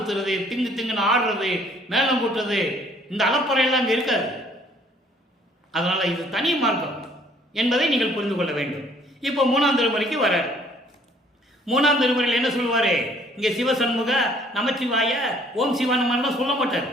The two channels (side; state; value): both; normal; correlation 0.60